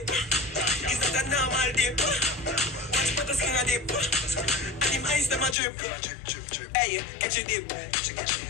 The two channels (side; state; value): right; drops out; at 5.6 s